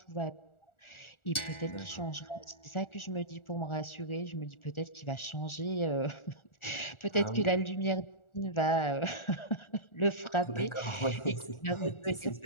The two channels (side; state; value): right; late; 1.4 ms